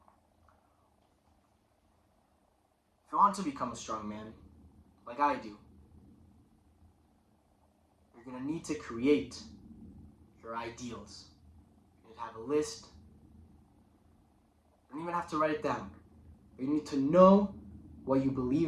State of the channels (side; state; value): both; identical; correlation 1.00